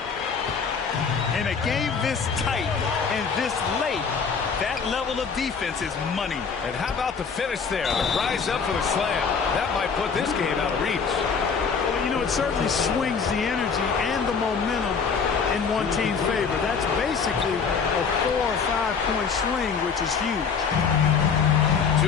In a game this tight and this late, that level of defense is money. And how about the finish there? The rise up for the slam. That might put this game out of reach. Well, you know, it certainly swings the energy and the momentum in one team's favor. That's basically a 4 or 5 point swing, which is huge.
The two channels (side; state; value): right; quieter; 5.8 dB